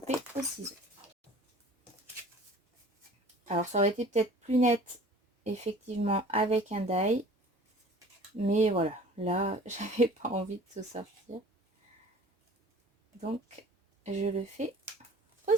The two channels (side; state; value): both; normal; correlation 0.46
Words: au ciseau. Alors ça aurait été peut-être plus net, effectivement, avec un die. Mais voilà, là j'avais pas envie de tout sortir. Donc je le fais au